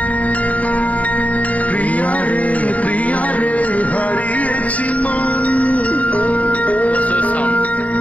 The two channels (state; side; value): late; right; 0.069 ms